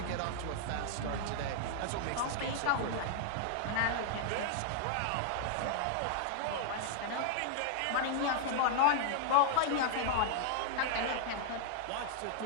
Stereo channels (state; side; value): different; both; correlation -0.01